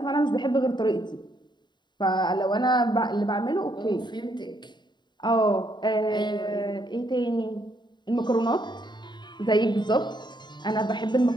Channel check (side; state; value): right; late; 0.22 ms